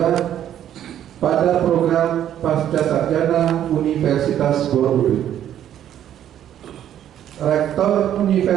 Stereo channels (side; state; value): left; quieter; 10.8 dB